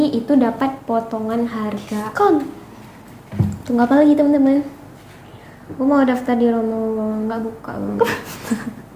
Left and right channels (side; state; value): both; identical; correlation 1.00